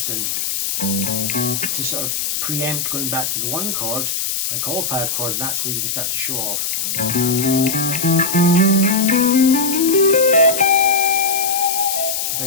to sort of preempt going back to the 1 chord. Like all 5 chords, that's where you can start to show off. A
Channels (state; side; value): noise; left; hiss, 1 dB below the sound